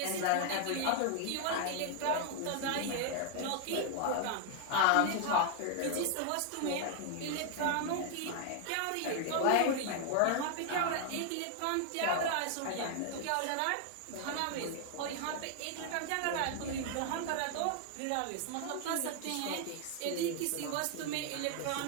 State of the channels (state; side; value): different; both; correlation 0.00